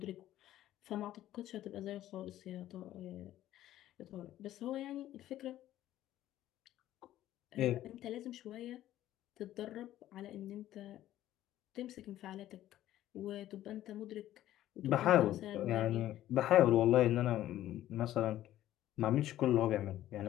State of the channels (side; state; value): right; quieter; 13.4 dB